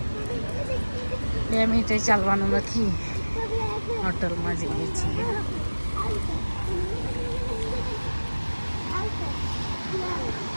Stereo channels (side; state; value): both; inverted; correlation -1.00